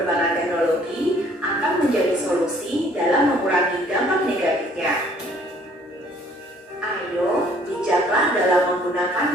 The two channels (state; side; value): normal; both; correlation 0.59